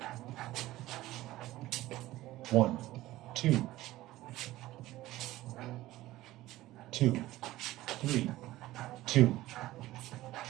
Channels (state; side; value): quieter; left; 16.6 dB